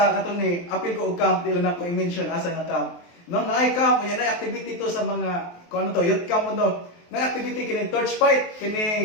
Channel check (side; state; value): right; late; 23 ms